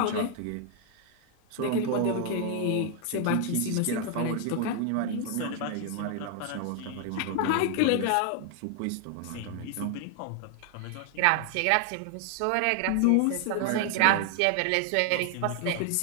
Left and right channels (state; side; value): different; both; correlation 0.00